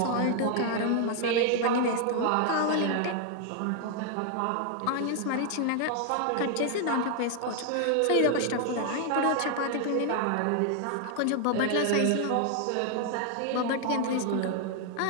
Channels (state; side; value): different; both; correlation 0.00